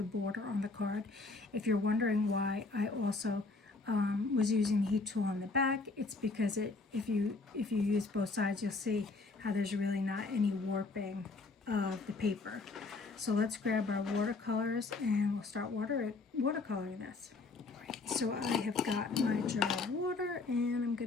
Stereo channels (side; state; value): right; quieter; 3.8 dB